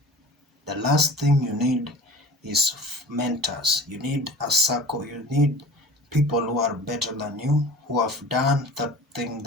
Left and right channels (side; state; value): both; normal; correlation 0.40